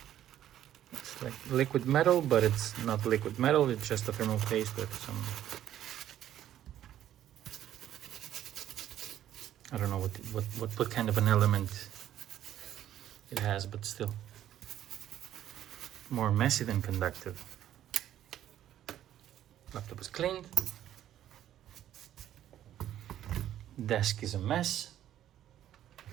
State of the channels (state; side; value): quieter; left; 11.7 dB